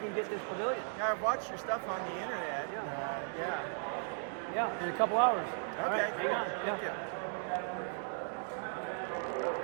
to get this pavilion. Now, I've watched your stuff on the internet. Yeah. Yeah, in a couple hours. All Okay, right, cool. hang on. Yeah.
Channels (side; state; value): left; silent; 53 dB below the other